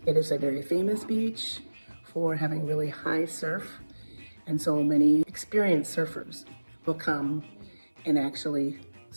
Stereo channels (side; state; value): both; inverted; correlation -1.00